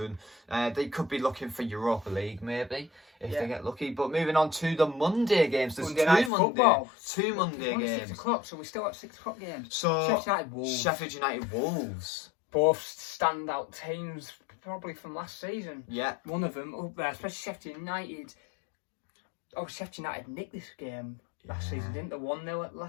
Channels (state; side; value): drops out; right; at 6.3 s